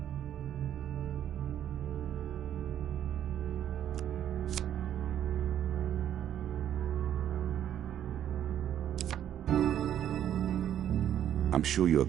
I'm sure you are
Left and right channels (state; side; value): quieter; left; 10.5 dB